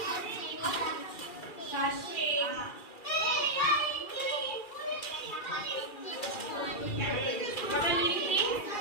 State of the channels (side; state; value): right; late; 2.3 ms